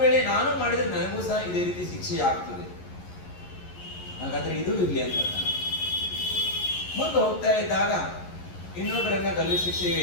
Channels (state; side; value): late; right; 11 ms